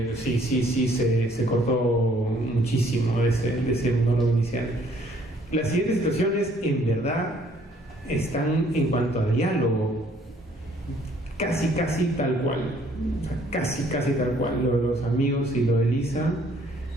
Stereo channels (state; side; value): normal; both; correlation 0.62